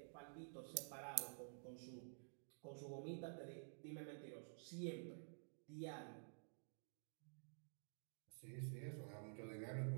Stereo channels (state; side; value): silent; left; digital silence